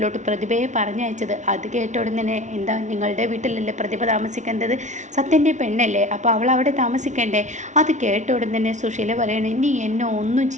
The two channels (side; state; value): left; late; 0.35 ms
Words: പ്രതിഭയെ പറഞ്ഞയച്ചത്. അത് കേട്ട ഉടനെ എന്താ നിങ്ങളുടെ വീട്ടിലല്ലേ പ്രതിഭ താമസിക്കേണ്ടത്, സത്യൻ്റെ പെണ്ണല്ലേ, അപ്പോൾ അവൾ അവിടെ താമസിക്കണ്ടേ. അത് കേട്ട ഉടനെ സുശീല പറയണേ, നീ എന്നെ ഒന്നും